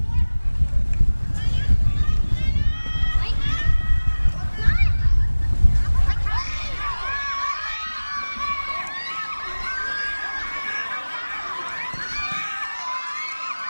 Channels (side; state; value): both; inverted; correlation -1.00